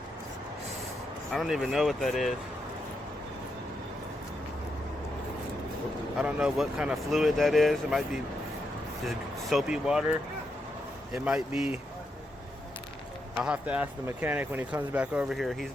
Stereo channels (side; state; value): both; normal; correlation 0.82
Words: I don't even know what that is. I don't know what kind of fluid that is. It might be just soapy water. It might be, I'll have to ask the mechanic when he comes back over here. He's